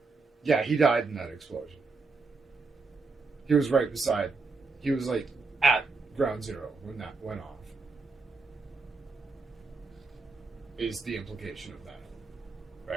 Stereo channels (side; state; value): left; quieter; 4.1 dB